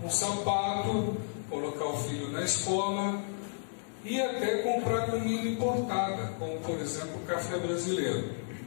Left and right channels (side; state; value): right; silent; 56 dB below the other